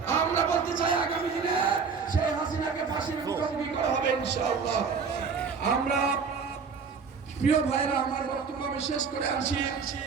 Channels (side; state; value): left; quieter; 5.6 dB